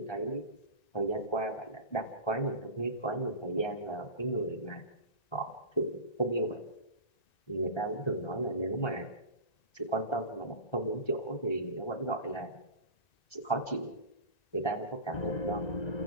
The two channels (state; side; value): late; right; 1.3 ms